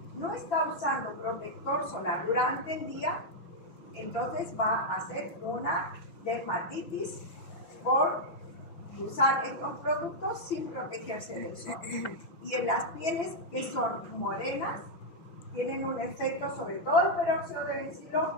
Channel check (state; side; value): late; right; 6.1 ms